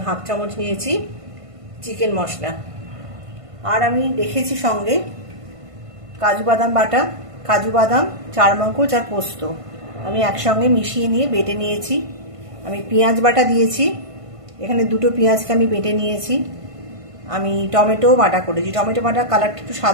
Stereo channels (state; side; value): late; left; 1.5 ms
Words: 1/2 চামচ নিয়েছি চিকেন মশলা। আর আমি রেখেছি সঙ্গে কাজু বাদাম বাটা, কাজু বাদাম, চারমগজ আর পোস্ত আমি একসঙ্গে মিশিয়ে নিয়ে বেটে নিয়েছি। আমি পেঁয়াজ বাটা দিয়েছি, এখানে দুটো পেঁয়াজকে আমি বেটে নিয়েছি। আমি টমেটো বাটা করেছি। টমেটো বাটা কালারটা একটু